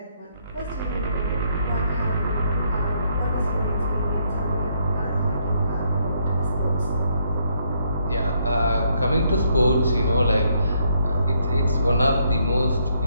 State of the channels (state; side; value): inverted; both; correlation -0.73